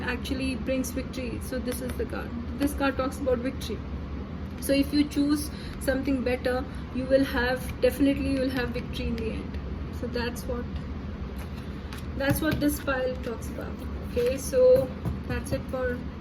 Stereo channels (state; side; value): identical; both; correlation 1.00